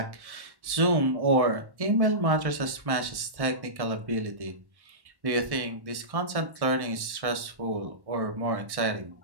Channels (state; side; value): late; left; 1.1 ms